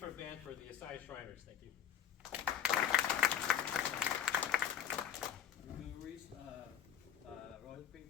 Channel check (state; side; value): quieter; right; 9.4 dB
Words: of Band for the Asai Shriners. Thank you. Bill Reese, Royal